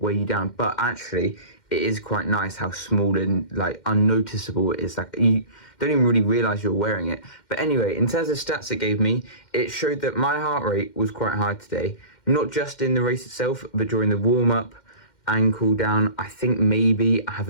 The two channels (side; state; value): right; late; 2.1 ms